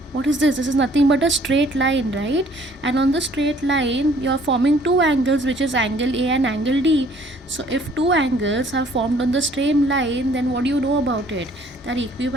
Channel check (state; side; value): normal; both; correlation 0.58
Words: what is this? This is nothing but a straight line, right? And on the straight line you are forming two angles, which is angle A and angle D. So if two angles are formed on the same line, then what do you know about it? They are